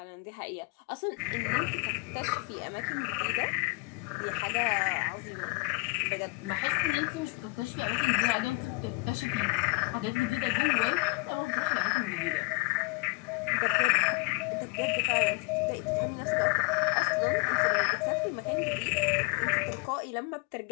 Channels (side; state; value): right; quieter; 27.9 dB